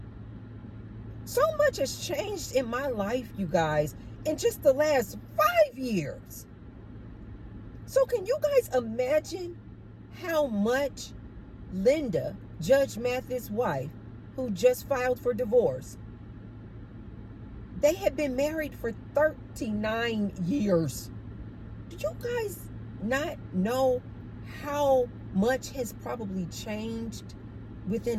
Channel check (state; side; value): identical; both; correlation 1.00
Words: So much has changed in my life, you guys, in just the last 5 years. So can you guys imagine how much Linda, Judge Mathis' wife, who just filed for divorce, they had been married for 39 years. Do you guys not know how much has probably changed